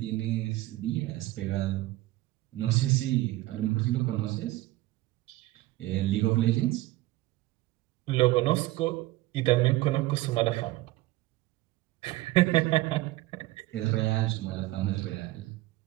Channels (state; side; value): quieter; left; 17.7 dB